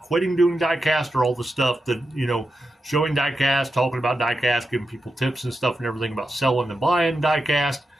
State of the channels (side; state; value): both; normal; correlation 0.88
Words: quitting doing diecast or all the stuff that, showing diecast, talking about diecast, giving people tips and stuff and everything about selling and buying diecast.